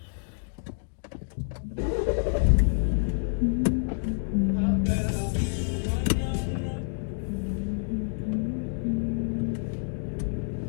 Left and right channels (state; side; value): silent; right; digital silence